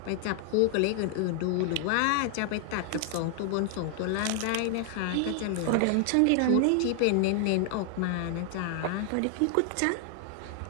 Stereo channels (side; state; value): both; different; correlation 0.00